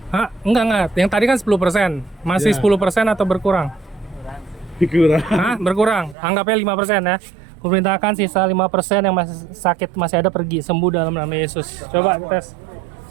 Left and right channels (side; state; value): left; drops out; at 6.2 s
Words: Hah? Enggak. Yang tadi kan 10%. Masih 10% atau berkurang? Berkurang. Hah? Berkurang. Anggapnya 5% ya. Kuperintahkan sisa 5% yang masih sakit masih ada pergi sembuh dalam nama Yesus. Coba tes.